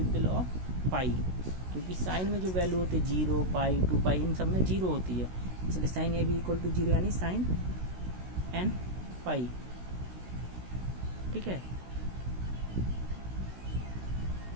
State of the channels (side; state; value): left; late; 16 ms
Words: ऑफ पाई, क्योंकि साइन में जो वैल्यू होती है 0 पाई 2 पाई इन सब में 0 होती है, इसलिए sine A B equal to 0 यानी साइन एन पाई। ठीक है,